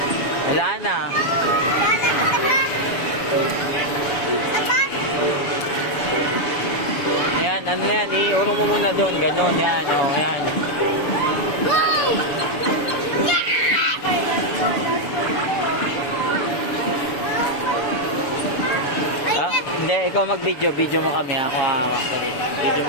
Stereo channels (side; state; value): right; late; 7.0 ms